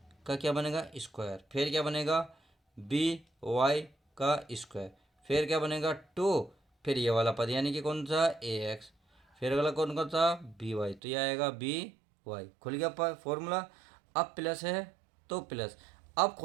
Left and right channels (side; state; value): left; drops out; at 11.0 s